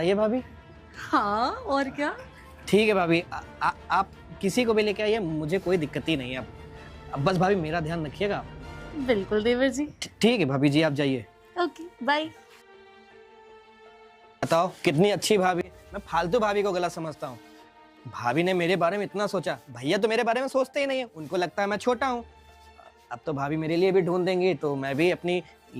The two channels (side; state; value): both; identical; correlation 1.00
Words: भाभी। हाँ और क्या। ठीक है भाभी, आप किसी को भी लेके आइए, मुझे कोई दिक्कत ही नहीं है। अब बस भाभी मेरा ध्यान रखिएगा। बिल्कुल देवर जी। ठीक है भाभी जी, आप जाइए। Okay bye. बताओ कितनी अच्छी भाभी। मैं फालतू भाभी को गलत समझता हूँ। भाभी ने मेरे बारे में इतना सोचा। भैया तो मेरे बारे में सोचते ही नहीं है, उनको लगता है मैं छोटा हूँ। अब तो भाभी मेरे लिए भी ढूंढ देंगी, तो मैं भी अपनी